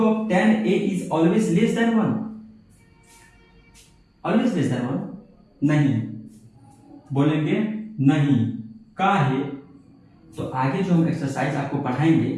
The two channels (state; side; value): identical; both; correlation 1.00